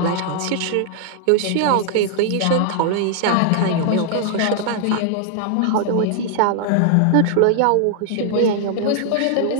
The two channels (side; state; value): both; different; correlation 0.00